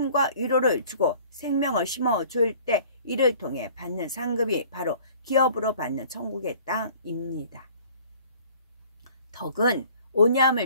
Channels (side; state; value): both; inverted; correlation -0.51